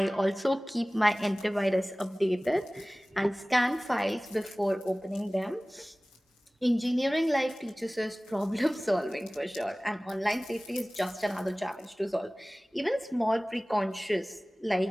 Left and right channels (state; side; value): normal; both; correlation 0.98